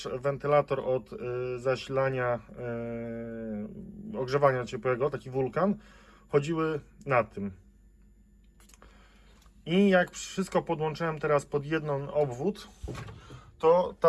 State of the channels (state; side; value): identical; both; correlation 1.00